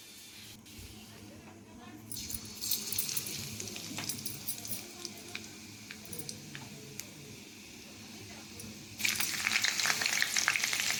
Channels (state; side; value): identical; both; correlation 1.00